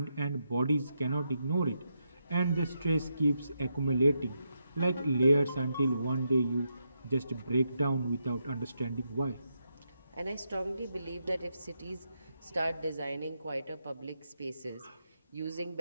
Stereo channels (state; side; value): inverted; both; correlation -0.83